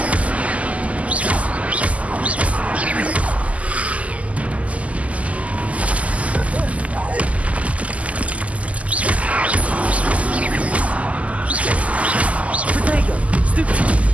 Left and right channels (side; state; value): left; late; 0.069 ms